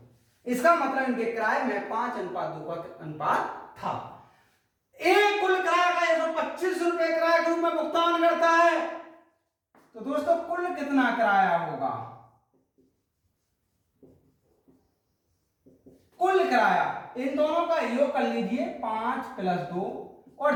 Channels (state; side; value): identical; both; correlation 1.00